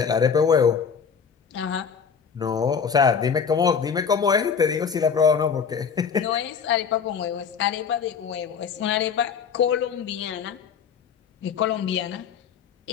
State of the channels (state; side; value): quieter; right; 6.6 dB